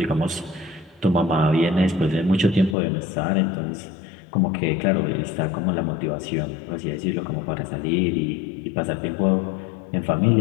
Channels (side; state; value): right; drops out; at 2.8 s